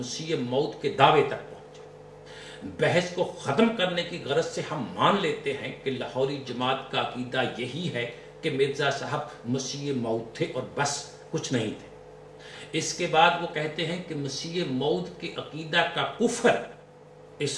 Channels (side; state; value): both; identical; correlation 1.00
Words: موعود کے دعوے تک پہنچے. بحث کو ختم کرنے کی غرض سے ہم مان لیتے ہیں کہ لاہوری جماعت کا عقیدہ یہی ہے کہ مرزا صاحب مسیح موعود تھے اور بس کچھ نہیں تھے. اس کے بعد وہ کہتے ہیں کہ مسیح موعود کے عقیدہ کا کفر